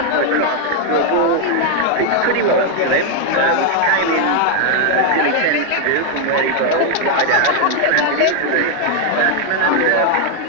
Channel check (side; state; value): both; different; correlation 0.00